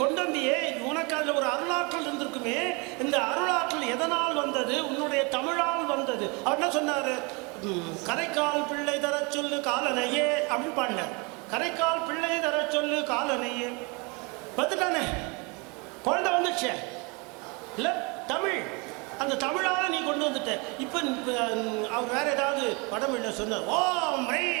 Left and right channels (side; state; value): left; quieter; 29.9 dB